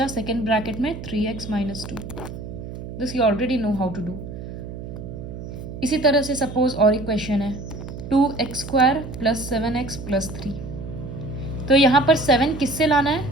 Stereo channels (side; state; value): right; noise; hum, 10 dB below the sound